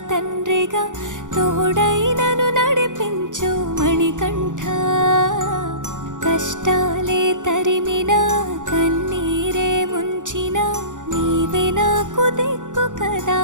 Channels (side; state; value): left; late; 0.87 ms